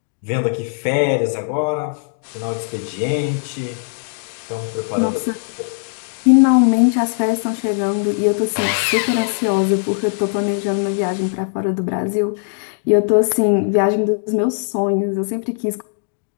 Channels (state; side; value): silent; right; digital silence